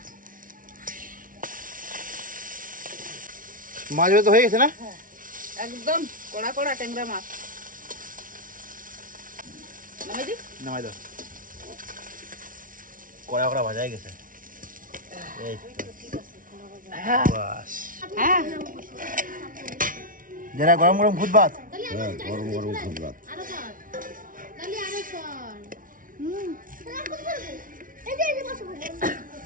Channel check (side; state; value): left; late; 0.39 ms